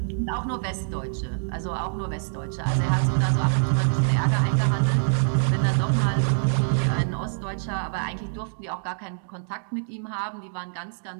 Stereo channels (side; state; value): left; silent; digital silence